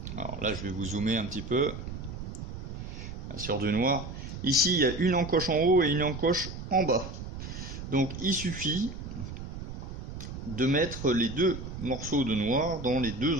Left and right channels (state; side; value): noise; right; rumble, 8 dB below the sound